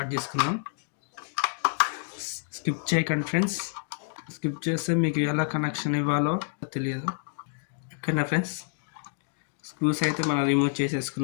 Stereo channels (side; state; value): right; silent; digital silence